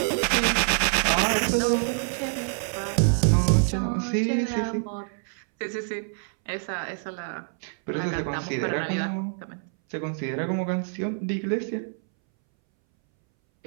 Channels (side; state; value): left; silent; 61 dB below the other